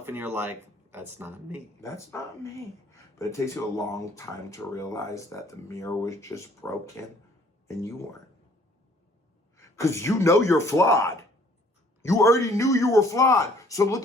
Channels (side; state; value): both; normal; correlation 0.59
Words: and you're like, that's not me. That's not me. But it takes you a long time to realize that the mirror was just broken and you weren't. Because you know you're flawed. You already knew you were flawed. So